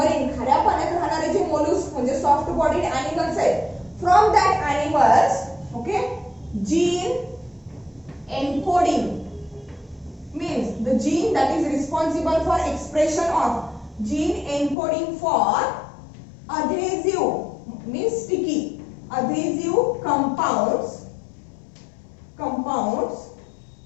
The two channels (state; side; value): drops out; right; at 14.8 s